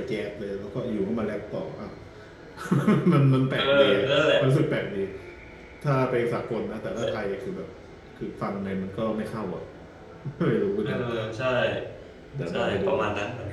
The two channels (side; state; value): both; identical; correlation 1.00